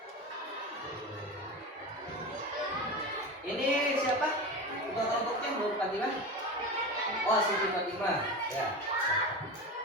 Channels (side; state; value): both; normal; correlation 0.25